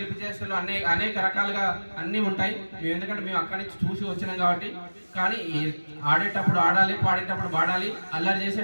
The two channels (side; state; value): both; inverted; correlation -1.00